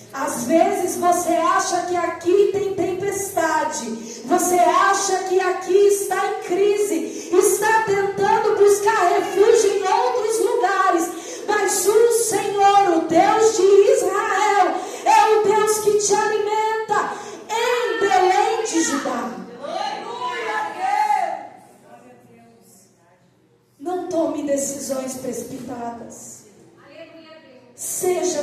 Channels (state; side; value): identical; both; correlation 1.00